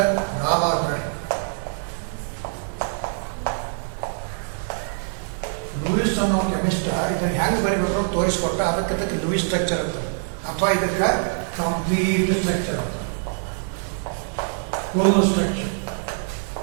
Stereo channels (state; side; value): silent; left; digital silence